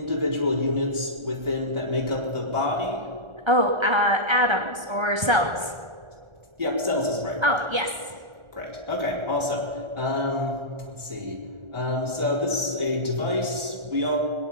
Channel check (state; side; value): late; left; 1.4 ms